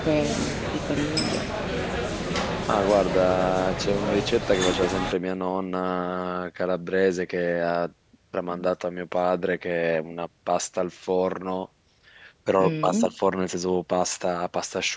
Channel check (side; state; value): both; identical; correlation 1.00